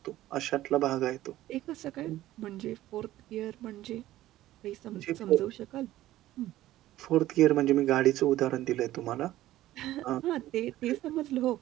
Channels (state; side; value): quieter; left; 14.9 dB